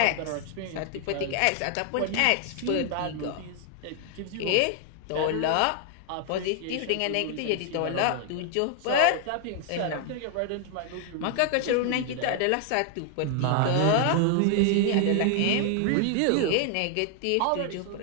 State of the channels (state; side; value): different; both; correlation 0.00